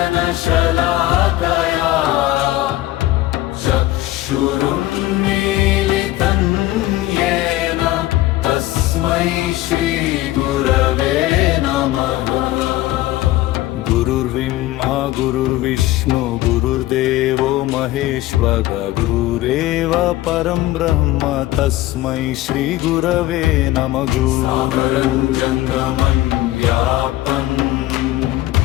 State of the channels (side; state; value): right; quieter; 16.4 dB